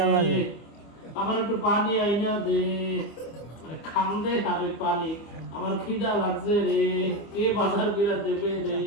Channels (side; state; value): right; late; 25 ms